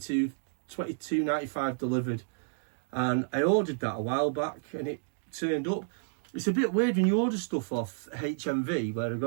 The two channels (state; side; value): silent; left; digital silence